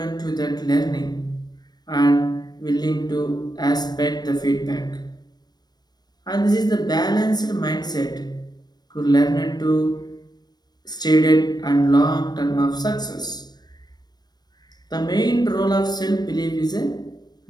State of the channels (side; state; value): right; late; 0.19 ms